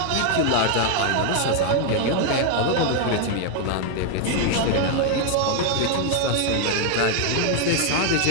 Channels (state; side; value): different; both; correlation 0.00